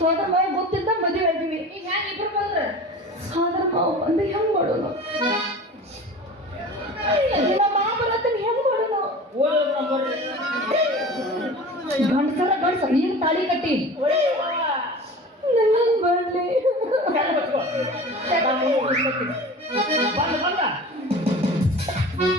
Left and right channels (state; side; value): normal; both; correlation 0.37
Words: ಮಾವ ಗೊತ್ತಿದ್ದ ಮದುವೆ ಆಗಿವಿ. ಈಗ ಹ್ಯಾಂಗ ಇಬ್ರು ಬಂದ್ರೆ ಸೋದರ ಮಾವ ಬಂದು ಹೆಂಗ್ ಮಾಡೋಣ? ನಮ್ಮ ಮಾವ ಬರತ್ತನ ಹೆಂಗ್ ಮಾಡೋಣ? ಗಂಡಸರ ನೀನು ತಾಳಿ ಕಟ್ಟಿ ನನ್ನ ಬರ್ಲಿ.